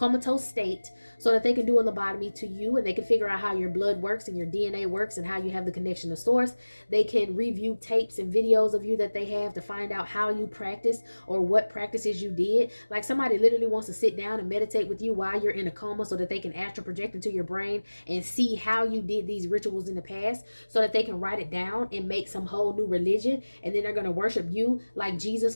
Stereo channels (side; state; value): both; inverted; correlation -1.00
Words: state, so that they can do a lobotomy to you and they can figure out how your blood works and your DNA works and how you have the connection to source. They can review tapes and videos of you that they have to find out how you practice or what practices you did. Like, somebody literally wants to sit down and meditate with you while you're in a coma so that they can astral project into your brain and see how you did these rituals in the past, so that they can write it down and make some whole new religion. And then they're going to worship you like Jesus